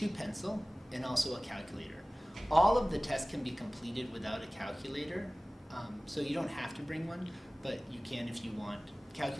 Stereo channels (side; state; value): both; normal; correlation 0.98